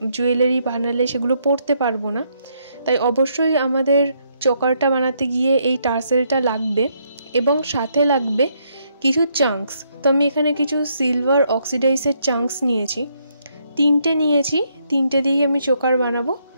জুয়েলারি বানালে সেগুলো পরতে পারবো না, তাই অবশ্যই আমাদের চোকারটা বানাতে গিয়ে এই টার্সেলটা লাগবে এবং সাথে লাগবে কিছু চাঙ্কস। তো আমি এখানে কিছু সিলভার অক্সিডাইজের চাঙ্কস নিয়েছি, তিনটে দিয়েই আমি চোকার বানাবো।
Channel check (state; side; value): inverted; both; correlation -0.74